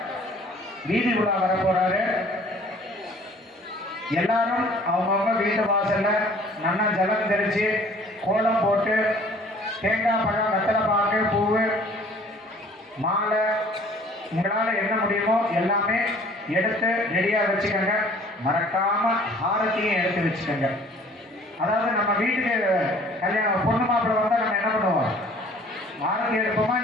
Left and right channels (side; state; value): both; normal; correlation 0.53